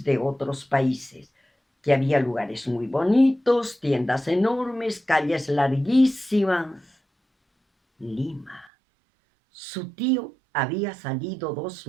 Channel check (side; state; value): left; drops out; at 8.7 s